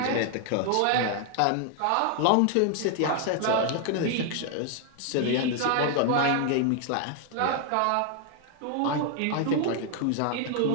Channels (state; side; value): different; both; correlation 0.00